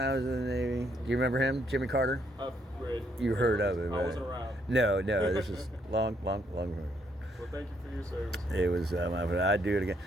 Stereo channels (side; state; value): both; normal; correlation 0.72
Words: I was in the Navy. Do you remember him, Jimmy Carter? I've read. You heard of him, right? I wasn't around. No, this is long. Well, thank you for your service. It was, I'd do it again.